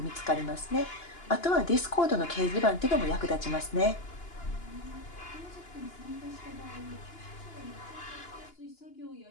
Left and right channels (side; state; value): right; late; 2.9 ms